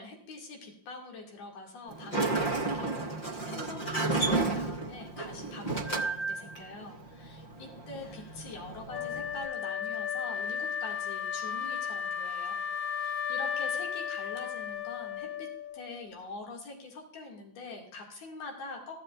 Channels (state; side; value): late; right; 5.7 ms